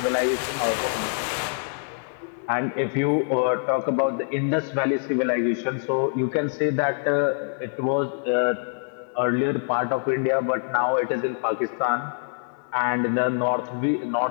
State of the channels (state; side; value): silent; right; digital silence